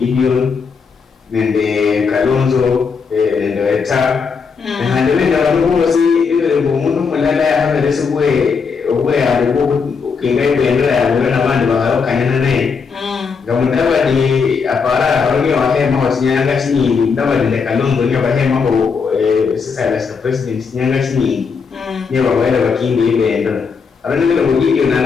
nende Kalonzo nende Weta na ndio ndio wanaozi ile ngumu mulala ya hapa leso bwe ya ukingai bendera ya wana bandi bakanyana naye Mdavadi apara harongi wahema wasinyanga chini Mdavadi nende Kalonzo ni wahema ko sasa la president nyanga chini ni wawele wakindi ile ndio arani ile mugiki na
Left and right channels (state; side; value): quieter; right; 5.5 dB